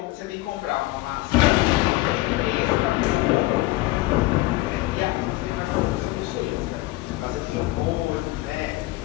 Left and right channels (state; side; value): quieter; right; 19.0 dB